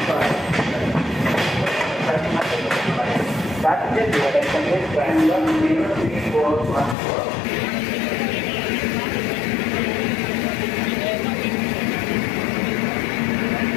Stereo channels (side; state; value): right; drops out; at 7.0 s